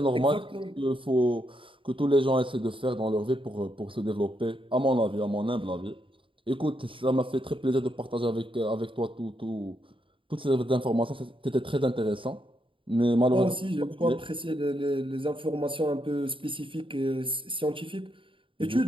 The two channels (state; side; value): late; left; 0.25 ms